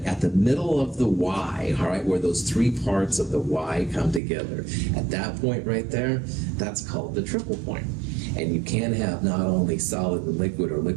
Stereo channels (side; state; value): left; drops out; at 4.2 s